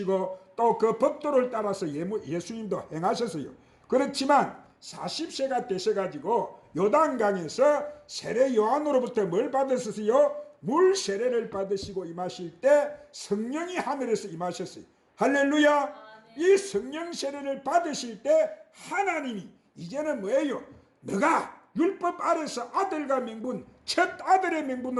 또 그 법도를 따라서 예수님도 행하셨어요. 그렇지만 40세가 되셔가지고 요단강에서 세례 요한으로부터 뭘 받으셨어요? 물 세례를 받으시고 임하실 때 성령이 하늘에서 임하셨어요. 할렐루야. 이 성령 세례를 받으실 때 하나님이 이제는 뭐예요? 너가 율법 아래서 아들과 명분, 첫 아들의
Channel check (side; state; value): both; identical; correlation 1.00